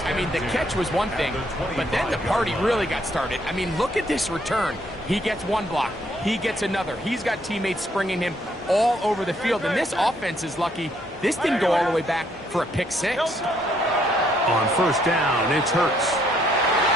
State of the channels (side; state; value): both; normal; correlation 0.70